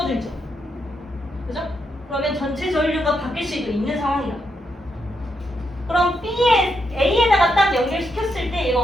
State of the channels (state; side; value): normal; both; correlation 0.81